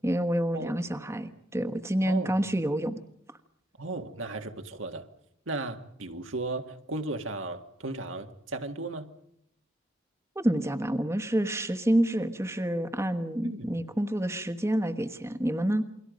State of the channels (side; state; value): both; normal; correlation 0.81